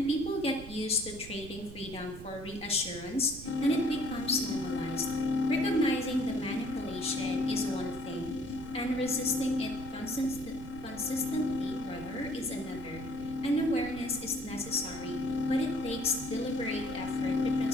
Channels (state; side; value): noise; right; rumble, 13 dB below the sound